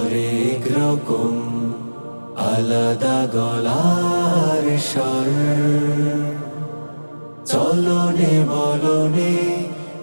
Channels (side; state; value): both; inverted; correlation -1.00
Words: রকম, আলাদা গলার স্বর, চলনে বলনে